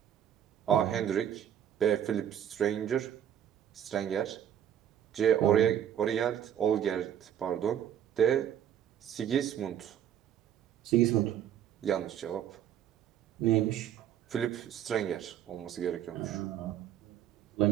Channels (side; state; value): left; quieter; 10.0 dB